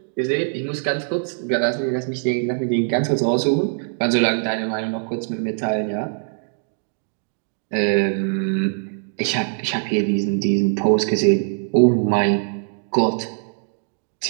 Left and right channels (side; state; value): left; silent; digital silence